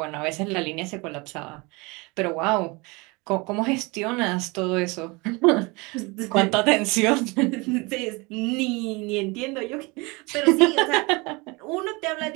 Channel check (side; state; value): left; quieter; 26.4 dB